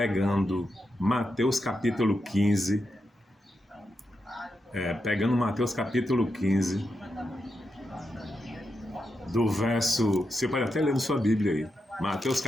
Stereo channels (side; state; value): both; normal; correlation 0.86